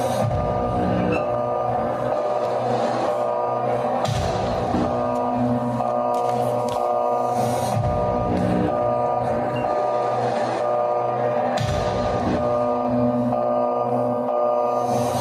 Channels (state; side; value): identical; both; correlation 1.00